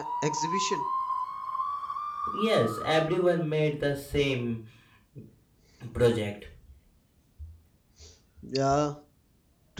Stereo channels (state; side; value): identical; both; correlation 1.00